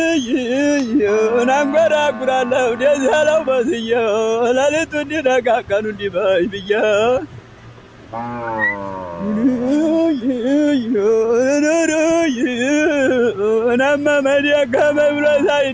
እናንጎራጉራለሁ ደስ ያለው መስዬ ሌሊቱ እንዲነጋ ቀኑ እንዲመሽ ብዬ እናመመን ደከመኝ ብሎ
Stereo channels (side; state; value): both; identical; correlation 1.00